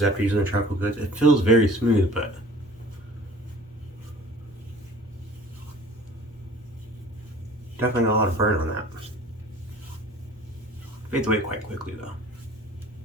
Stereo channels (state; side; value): normal; both; correlation 0.48